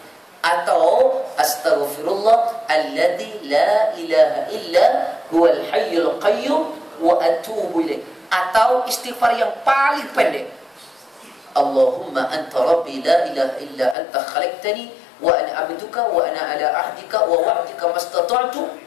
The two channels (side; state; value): right; drops out; at 14.0 s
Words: Atau astaghfirullah alladzi la ilaha illa huwal hayyul qayyum wa atubu ilaih. Atau istighfar yang paling pendek, Allahumma anta rabbi la ilaha illa anta khalaqtani wa ana abduka wa ana ala ahdika wa wa'dika mastata'tu